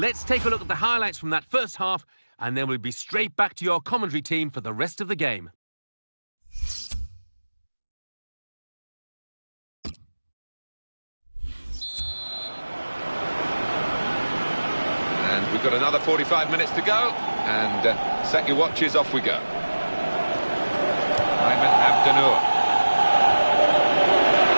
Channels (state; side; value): inverted; both; correlation -1.00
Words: take a look at the highlights from that first half, and then we'll be straight back to your commentary team for the rest of the game. And we've got another 45 minutes to go, and set your watches, off we go. Ayman Abdenour.